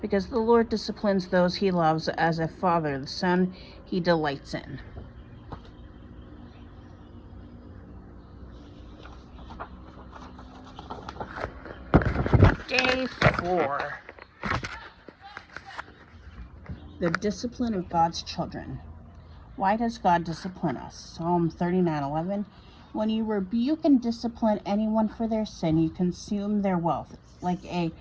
because the Lord disciplines those he loves as a father, the son he delights in. Day 4. The discipline of God's children. Why does God discipline us? Psalm 39:11. When you rebuke and discipline anyone for their sin, you consume their wealth. Like a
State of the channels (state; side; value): identical; both; correlation 1.00